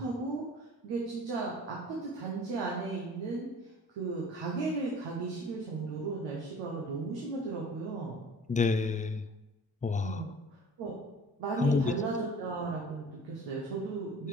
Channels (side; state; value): both; normal; correlation 0.45